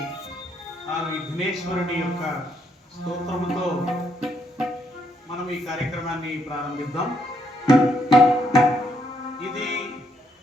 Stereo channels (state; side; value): normal; both; correlation 0.75